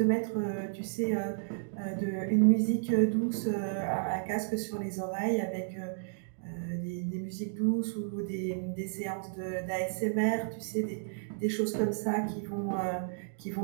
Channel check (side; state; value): left; silent; digital silence